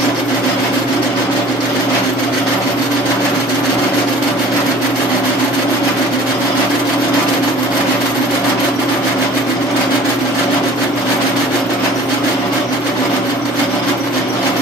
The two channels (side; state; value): both; normal; correlation 0.48